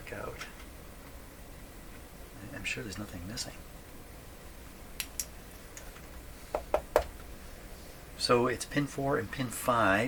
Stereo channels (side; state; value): both; identical; correlation 1.00